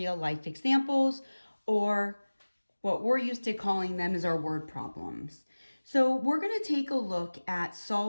life examples, or what we're used to calling them is our word problems. So we're going to take a look at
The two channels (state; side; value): inverted; both; correlation -1.00